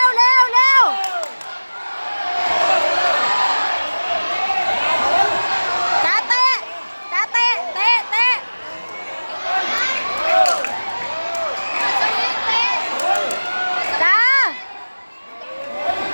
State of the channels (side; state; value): both; inverted; correlation -1.00